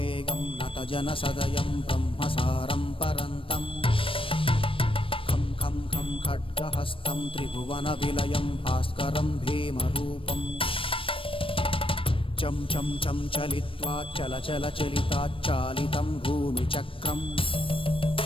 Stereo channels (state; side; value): late; right; 0.26 ms